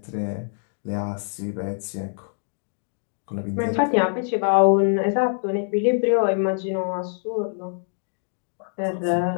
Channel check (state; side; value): silent; right; digital silence